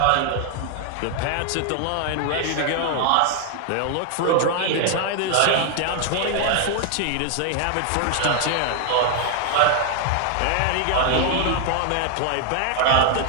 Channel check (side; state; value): both; different; correlation 0.00